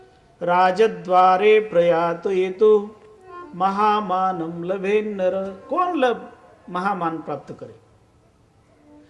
રાજદ્વારે પ્રયાતો એ તો મહામાનમ લભે નર. કોણ મહામાન પ્રાપ્ત કરે?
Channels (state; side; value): identical; both; correlation 1.00